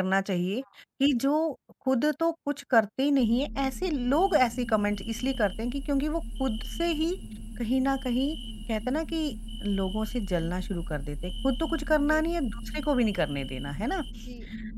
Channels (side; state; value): both; identical; correlation 1.00